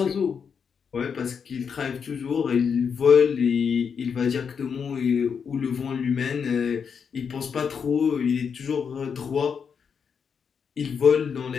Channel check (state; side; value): quieter; right; 6.5 dB